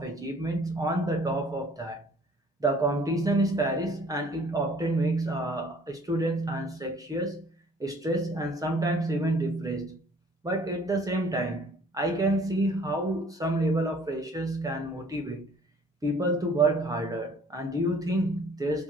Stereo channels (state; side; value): normal; both; correlation 0.55